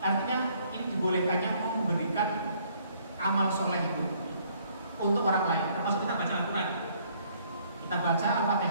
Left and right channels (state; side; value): inverted; both; correlation -0.64